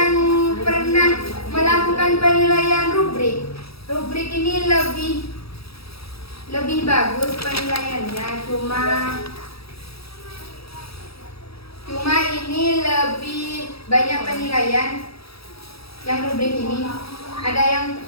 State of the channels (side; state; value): right; late; 0.77 ms